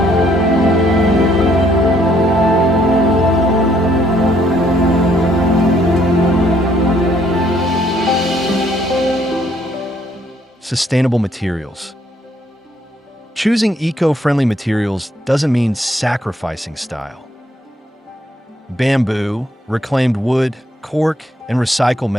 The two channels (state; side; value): normal; both; correlation 0.68